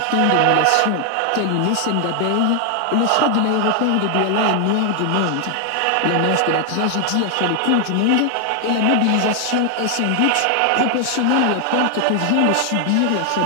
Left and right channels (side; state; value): both; different; correlation 0.00